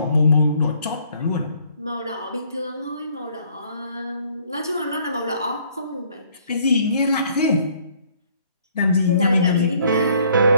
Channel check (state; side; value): inverted; both; correlation -0.62